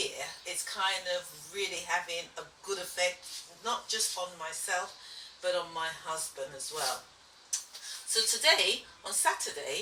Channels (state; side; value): identical; both; correlation 1.00